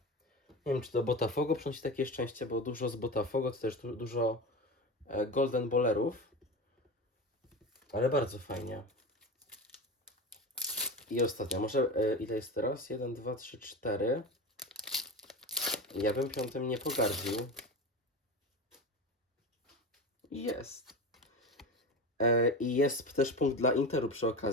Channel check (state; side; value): normal; both; correlation 0.26